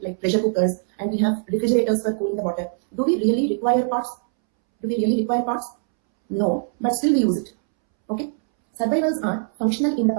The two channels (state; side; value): silent; left; 64 dB below the other